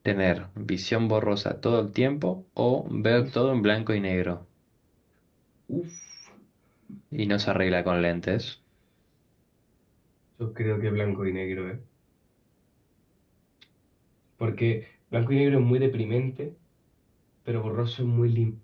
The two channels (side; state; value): both; identical; correlation 1.00